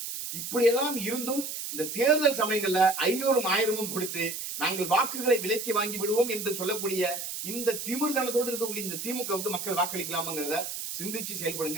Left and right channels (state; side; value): noise; right; hiss, 6 dB below the sound